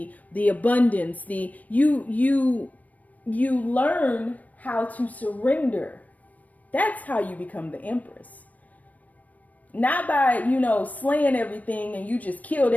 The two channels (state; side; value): late; right; 0.073 ms